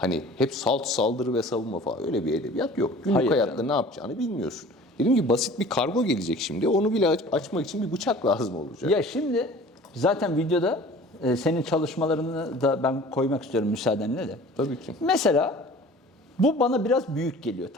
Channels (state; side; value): normal; both; correlation 0.45